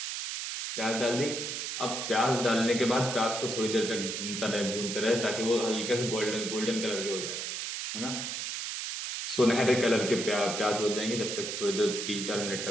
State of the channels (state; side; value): noise; right; hiss, 4 dB below the sound